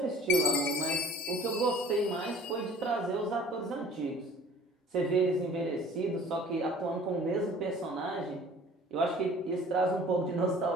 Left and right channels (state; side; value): normal; both; correlation 0.49